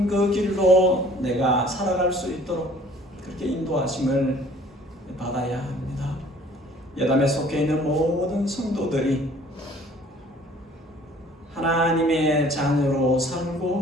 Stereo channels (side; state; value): both; normal; correlation 0.54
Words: 그 길로 내가 살아갈 수 있도록 그렇게 인도하심을 받아야 합니다. 예담에 속해 있는 모든 성도들이 하나님의 자녀로